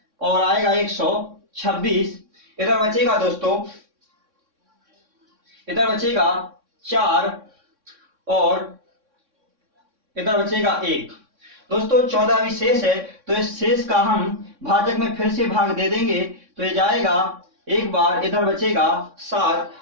और आएगा 126। इधर बचेगा दोस्तों, इधर बचेगा 4 और इधर बचेगा 1। दोस्तों 14 विशेष है, तो इस शेष का हम भाजक में फिर से भाग दे देंगे, तो ये जाएगा एक बार, इधर बचेगा 7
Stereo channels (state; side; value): late; left; 3.6 ms